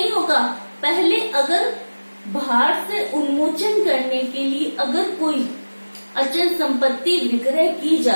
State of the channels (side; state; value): both; inverted; correlation -1.00